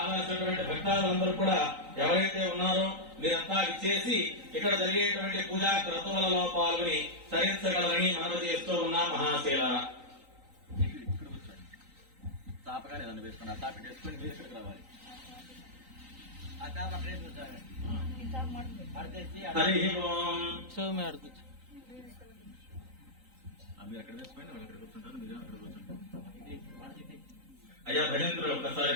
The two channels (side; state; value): left; late; 3.9 ms